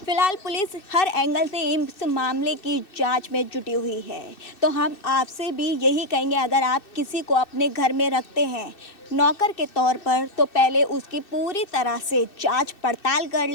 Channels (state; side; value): late; right; 2.6 ms